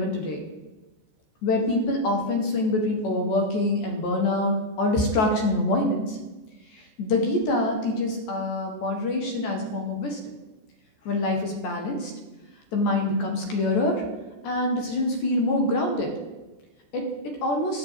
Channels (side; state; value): right; late; 14 ms